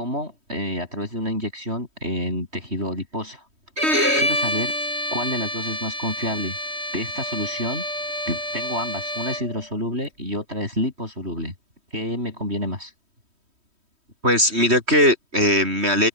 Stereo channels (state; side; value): late; left; 3.1 ms